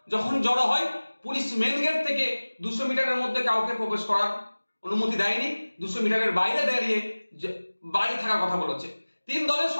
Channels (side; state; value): both; inverted; correlation -1.00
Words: যখন জড়ো হয়, পুলিশ মেন গেট থেকে 200 মিটারের মধ্যে কাউকে প্রবেশ করার অনুমতি দেয়নি, 200 মিটারের বাইরে দাঁড়িয়ে বাইরে থাকার কথা বলেছে। তিন দলের